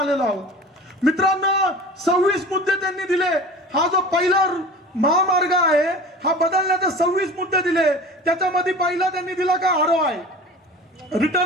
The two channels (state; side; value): normal; both; correlation 0.37